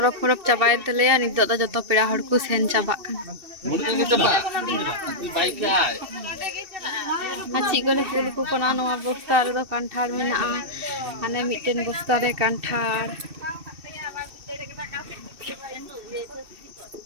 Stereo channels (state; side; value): late; left; 2.7 ms